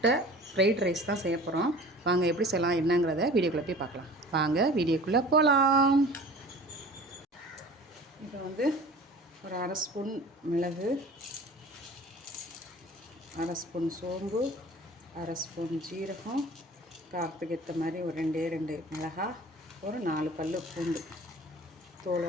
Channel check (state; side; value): normal; both; correlation 0.43